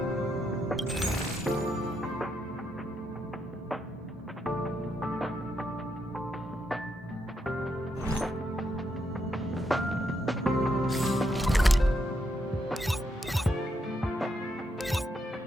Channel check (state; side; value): normal; both; correlation 0.80